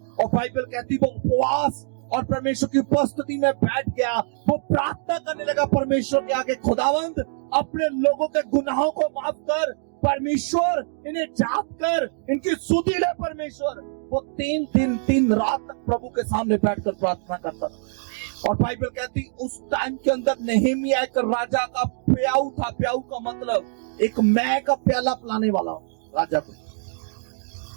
और बाइबल कहती वो उपवास और परमेश्वर की उपस्थिति में बैठ गया। वो प्रार्थना करने लगा परमेश्वर के आगे, खुदावंद अपने लोगों के गुनाहों को माफ कर, परमेश्वर इन्हें जाप कर, इनकी सुधि ले परमेश्वर। वो 3 दिन 3 रात तक प्रभु के सामने बैठकर प्रार्थना करता था। और बाइबल कहती उस टाइम के अंदर नेहेमिया एक राजा का प्याऊ था। प्याऊ का मतलब एक मैं का प्याला पिलाने वाला राजा को।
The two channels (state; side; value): silent; left; digital silence